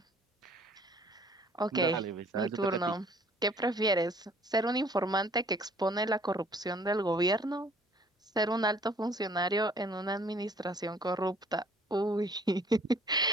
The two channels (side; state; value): both; normal; correlation 0.56